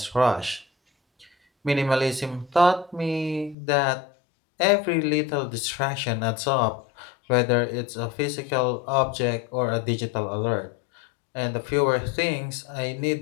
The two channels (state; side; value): drops out; right; at 3.6 s